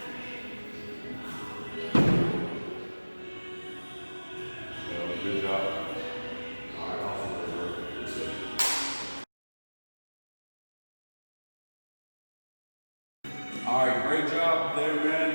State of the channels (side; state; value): both; inverted; correlation -1.00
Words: Good job. All right, awesome. All right, great job there, man.